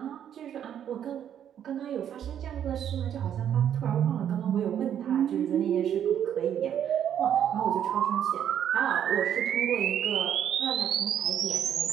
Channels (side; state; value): left; quieter; 9.6 dB